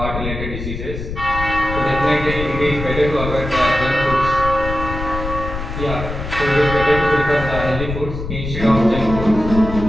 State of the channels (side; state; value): left; noise; rumble, 7 dB below the sound